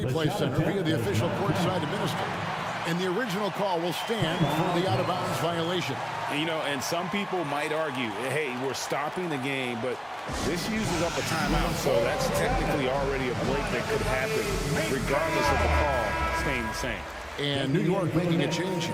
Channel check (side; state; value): both; identical; correlation 1.00